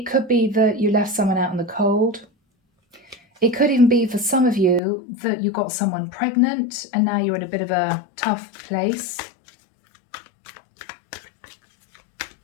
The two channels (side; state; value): right; drops out; at 4.8 s